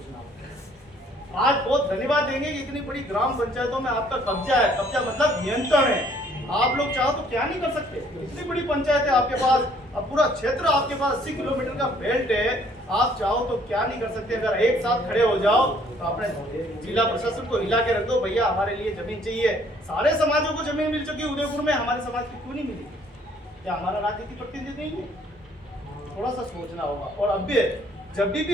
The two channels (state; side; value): normal; both; correlation 0.61